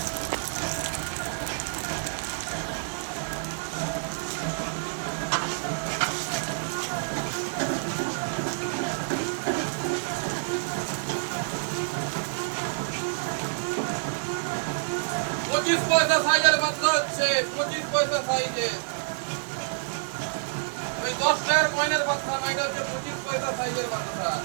পঁচিশ পয়সা সাইজের বাচ্চা হচ্ছে, 25 পয়সা সাইজে। ওই 10 টাকার কয়েনের বাচ্চা না, এটা হচ্ছে 25 পয়সা সাইজের বাচ্চা।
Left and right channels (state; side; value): silent; left; digital silence